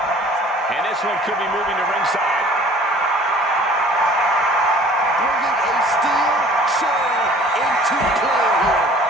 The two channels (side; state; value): both; normal; correlation 0.50